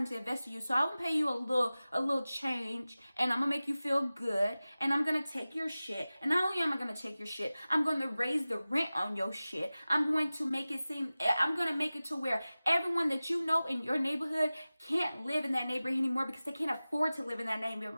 to invest in you, so I'm gonna pay you a little change, and I'm gonna make you feel good, and I'm gonna take your shit. And not only am I gonna take your shit, I'm gonna raise the rent on your shit. I'm going to make it to where everyone that you know in your neighborhood can't live in that neighborhood anymore because they can't afford to live in that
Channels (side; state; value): both; inverted; correlation -0.97